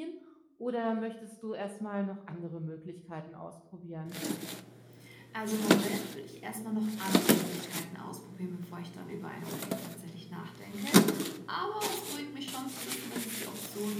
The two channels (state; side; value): identical; both; correlation 1.00